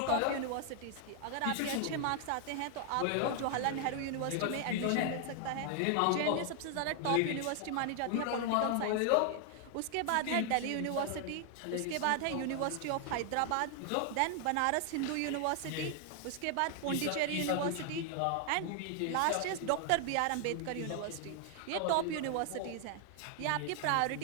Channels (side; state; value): both; different; correlation 0.00